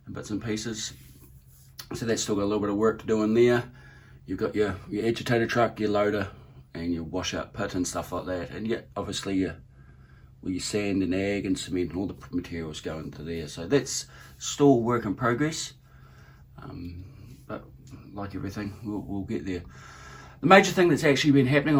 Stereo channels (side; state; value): both; identical; correlation 1.00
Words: in bits and pieces. So that's still got a little bit of work to do in there. You've got your agitator truck, your loader, and your washout pit and stuff like that. And yet, obviously, your sand and ag and cement and all the materials go into there. So that's still work in progress. But like everything, we'll get there. The major thing that's actually been happening